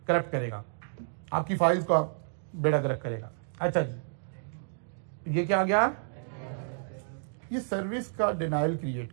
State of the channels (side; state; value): left; silent; digital silence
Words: करप्ट करेगा, आपकी फाइल्स का बेड़ा गर्क करेगा। अच्छा जी, ये क्या आ गया, ये सर्विस का डिनाइल क्रिएट